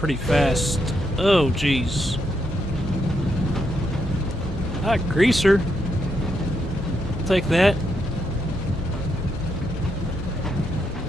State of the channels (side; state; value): both; normal; correlation 0.80